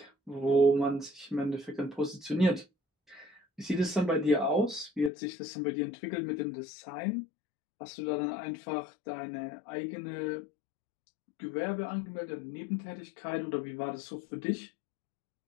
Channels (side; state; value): right; drops out; at 5.1 s